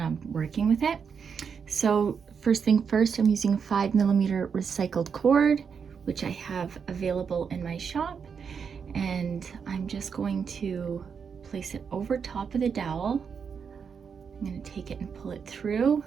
working with it. So first thing first, I'm using 5mm recycled cord, which I have available in my shop. And I'm just going to place it over top of the dowel. I'm going to take it and pull it through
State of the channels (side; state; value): left; quieter; 6.4 dB